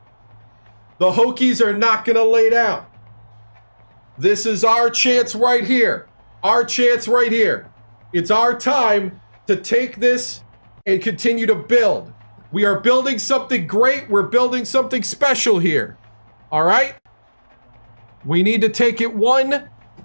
The Hokies are not going to lay down. This is our chance right here. Our chance right here. It's our time to take this and continue to build. We are building something great. We're building something special here. All right? We need to take it one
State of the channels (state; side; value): inverted; both; correlation -1.00